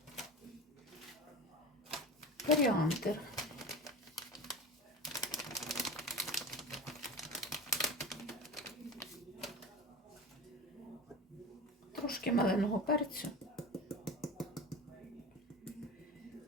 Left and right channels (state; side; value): normal; both; correlation 0.32